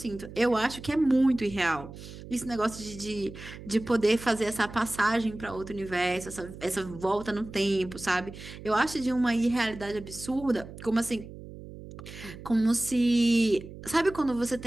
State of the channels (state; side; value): noise; right; hum, 14 dB below the sound